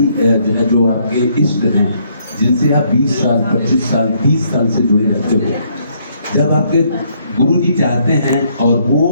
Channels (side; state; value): both; inverted; correlation -0.69